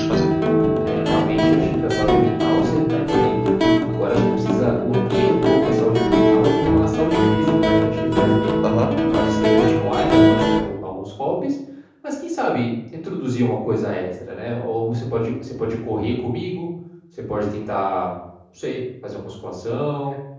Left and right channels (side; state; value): both; identical; correlation 1.00